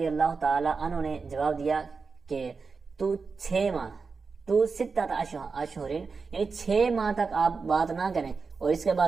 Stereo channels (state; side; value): quieter; left; 4.8 dB